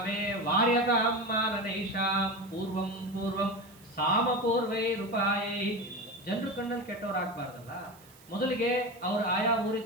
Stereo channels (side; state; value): right; noise; hiss, 25 dB below the sound